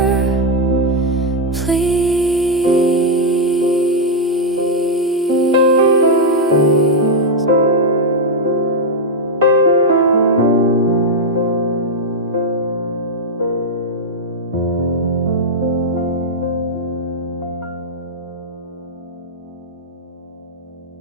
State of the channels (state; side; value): normal; both; correlation -0.01